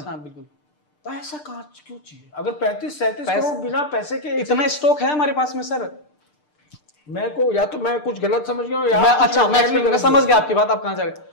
बिल्कुल। तो ऐसा कहाँ क्यों चाहिए? अगर 35-37 करोड़ बिना पैसे के इतना स्टॉक है हमारे पास में सर। मैं को या तो मैं कुछ गलत समझ गया हूं या मैं समझ गया आपकी बात, आप कहां जा रहे हैं।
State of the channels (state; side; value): late; right; 6.7 ms